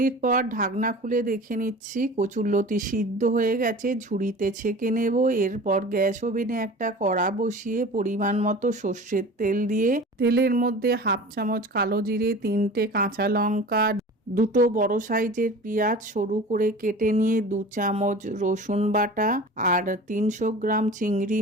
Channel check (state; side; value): normal; both; correlation 0.38